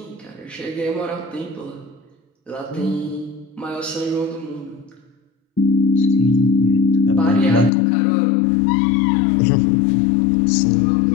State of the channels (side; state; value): right; drops out; at 7.7 s